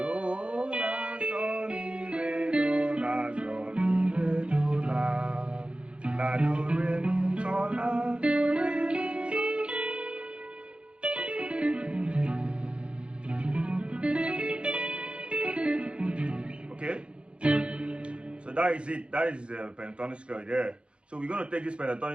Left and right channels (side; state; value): left; late; 0.057 ms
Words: La, Sol, Mi, Re, Do, La, Sol, Mi, Re, Do, La, La, Do, Re, Mi, Sol, La, Do, Re, Mi, Sol. Okay, so that is it. That is the pentatonic scale there. So we're going to take this